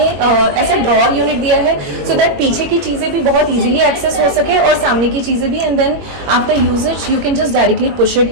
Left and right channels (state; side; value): late; left; 21 ms